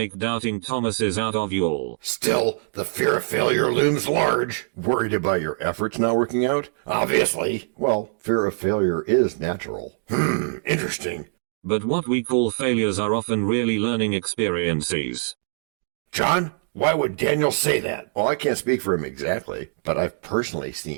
doubting Thomases out of you all. Still, the fear of failure looms large. Worried about your efforts not working out? Obviously. Well, fear of failure is natural. Interesting. But what we call failures are often really learning experiences. John, why would Daniel say that? Well, I can't speak for him exactly, but I've personally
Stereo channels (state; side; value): silent; left; digital silence